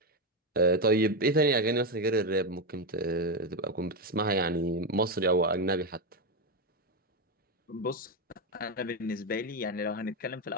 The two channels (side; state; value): both; normal; correlation 0.08